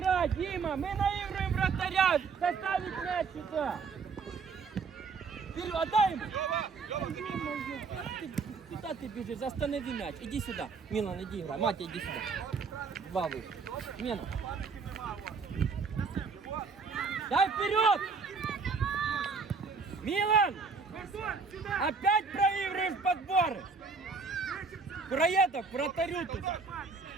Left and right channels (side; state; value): left; quieter; 4.8 dB